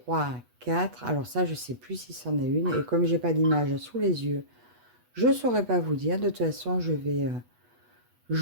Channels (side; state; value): left; late; 8.2 ms